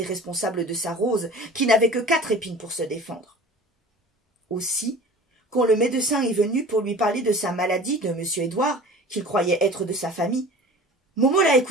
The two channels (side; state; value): both; normal; correlation 0.42